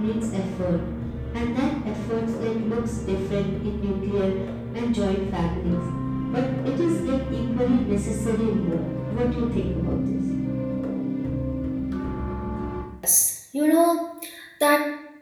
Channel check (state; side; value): identical; both; correlation 1.00